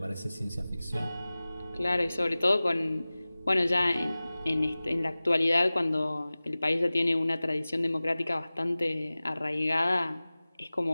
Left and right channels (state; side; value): inverted; both; correlation -0.98